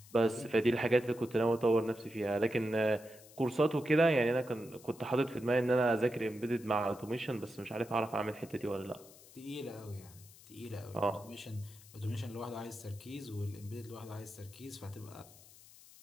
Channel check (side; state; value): left; noise; hiss, 21 dB below the sound